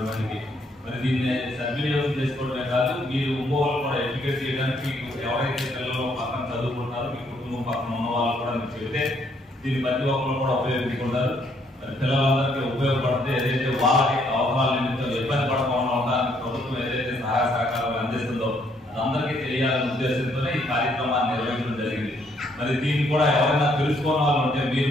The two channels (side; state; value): both; normal; correlation 0.69